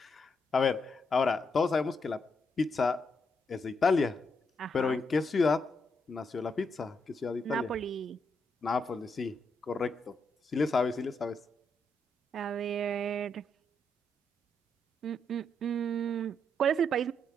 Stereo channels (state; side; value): normal; both; correlation 0.79